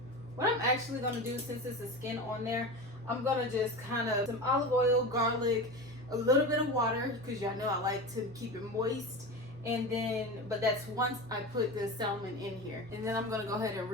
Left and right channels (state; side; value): normal; both; correlation 0.27